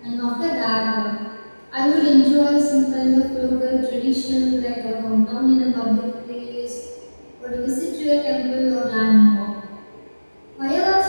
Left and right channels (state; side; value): inverted; both; correlation -1.00